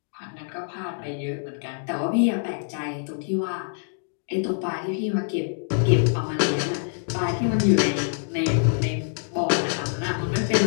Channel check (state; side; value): silent; right; digital silence